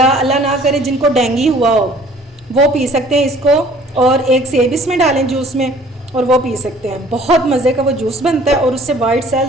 अल्लाह ना करे जिनको डेंगू हुआ हो वो पी सकते हैं इसको, और एक सेब इसमें डालें जूस में और वो पी सकते हैं। बहुत मज़े का वो जूस बनता है और उससे वाइट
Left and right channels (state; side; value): normal; both; correlation 0.53